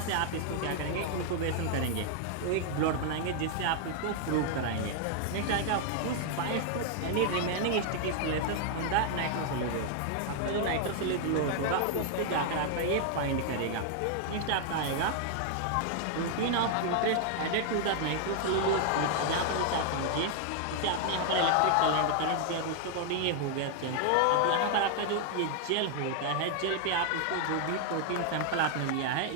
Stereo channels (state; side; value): different; both; correlation 0.00